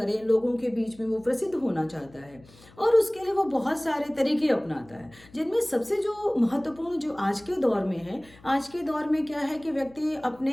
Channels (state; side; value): noise; left; hum, 25 dB below the sound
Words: लोगों के बीच में वो प्रसिद्ध होना चाहता है और उसके लिए वो बहुत सारे तरीके अपनाता है, जिनमें सबसे जो महत्वपूर्ण जो आज के दौर में है, आज के दौर में क्या है कि व्यक्ति